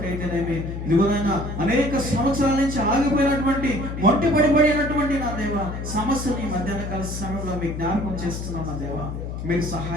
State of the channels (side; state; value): left; noise; hum, 6 dB below the sound